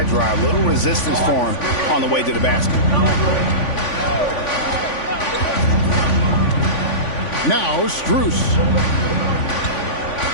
drive. Little resistance for him on the way to the basket. Now Strus.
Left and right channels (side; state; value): right; late; 3.5 ms